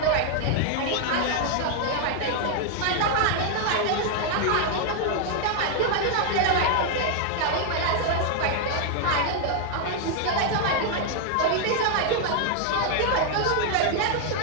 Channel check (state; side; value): different; both; correlation 0.00